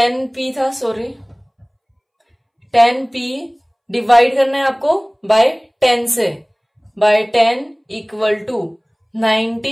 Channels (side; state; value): both; identical; correlation 1.00